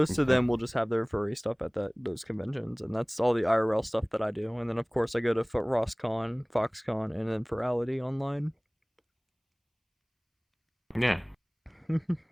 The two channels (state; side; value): identical; both; correlation 1.00